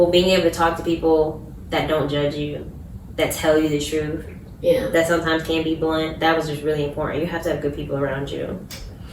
being able to talk to people that don't judge you, that tell you the truth, that sometimes can be blunt. That was just really important. You have to have good people around you.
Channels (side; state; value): both; identical; correlation 1.00